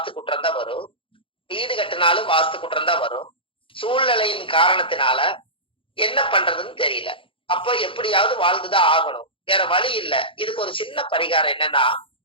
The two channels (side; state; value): right; late; 0.25 ms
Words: குற்றம் தான் வரும், வீடு கட்டினாலும் வாஸ்து குற்றம் தான் வரும். சூழ்நிலையின் காரணத்தினால என்ன பண்றதுன்னு தெரியல. அப்போ எப்படியாவது வாழ்ந்துதான் ஆகணும், வேற வழி இல்ல. இதுக்கு ஒரு சின்ன பரிகாரம் என்னன்னா,